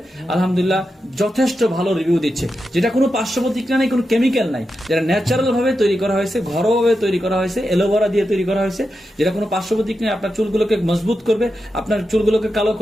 আলহামদুলিল্লাহ যথেষ্ট ভালো রিভিউ দিচ্ছে। যেটা কোনো পার্শ্ব প্রতিক্রিয়া নেই, কোনো কেমিক্যাল নাই, যেটা ন্যাচারাল ভাবে তৈরি করা হয়েছে, ঘরোয়া ভাবে তৈরি করা হয়েছে, এলোভেরা দিয়ে তৈরি করা হয়েছে, যেটা কোনো পার্শ্ব প্রতিক্রিয়া আপনার চুলগুলোকে মজবুত করবে, আপনার চুলগুলোকে কালো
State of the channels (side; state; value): both; normal; correlation 0.89